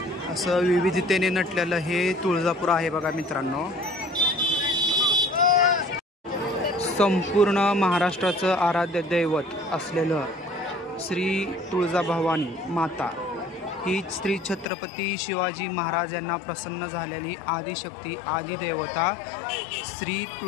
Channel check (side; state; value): right; drops out; at 14.7 s